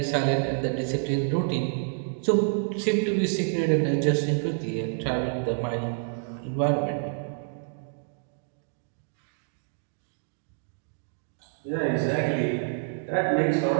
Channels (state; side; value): silent; left; digital silence